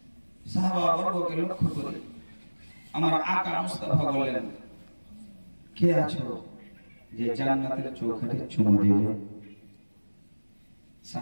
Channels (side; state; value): both; inverted; correlation -1.00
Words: সাহাবা বর্গকে লক্ষ্য করে আমার আকা মুস্তাফা বললেন, কে আছো যে জান্নাতের চৌখাটে চুমু দেবে?